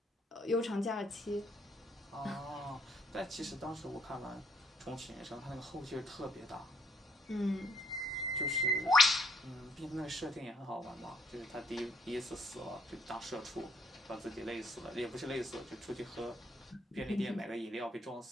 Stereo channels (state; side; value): normal; both; correlation 0.69